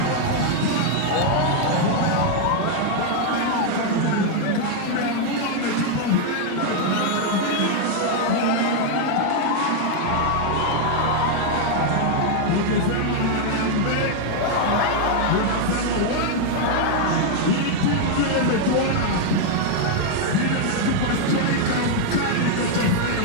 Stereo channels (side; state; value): both; different; correlation 0.00